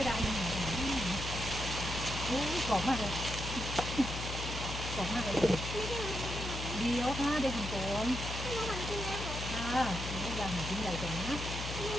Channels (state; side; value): noise; left; hum, 5 dB below the sound